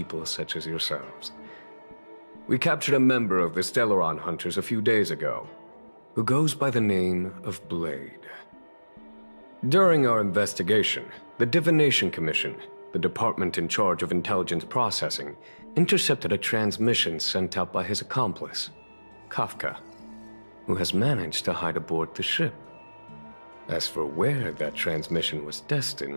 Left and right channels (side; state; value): both; inverted; correlation -1.00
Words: such as yourselves. We captured a member of the Stellaron Hunters a few days ago, who goes by the name of Blade. During our investigation, the Divination Commission, the department in charge of intelligence processing, intercepted a transmission sent out by his accomplice, Kafka, who has managed to hide aboard the ship. As for where that transmission was